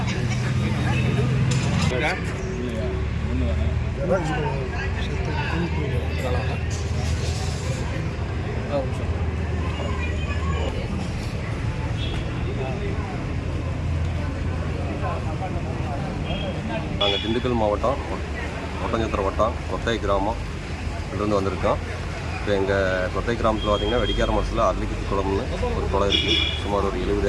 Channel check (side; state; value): both; identical; correlation 1.00